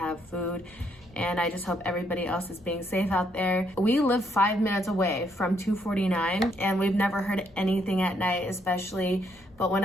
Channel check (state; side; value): normal; both; correlation 0.73